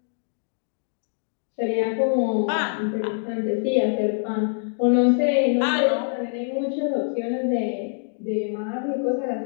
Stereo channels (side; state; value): right; silent; digital silence